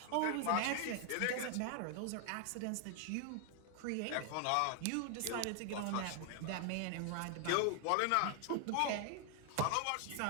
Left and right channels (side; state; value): both; different; correlation 0.00